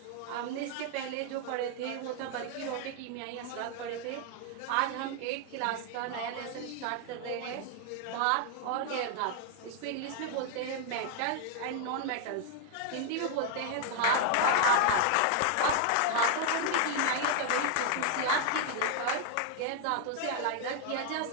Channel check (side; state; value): both; different; correlation 0.00